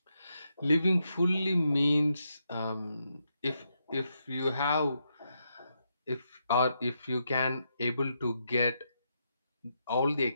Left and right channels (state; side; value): inverted; both; correlation -0.82